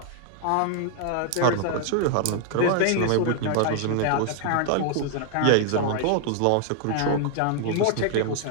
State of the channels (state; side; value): different; both; correlation 0.00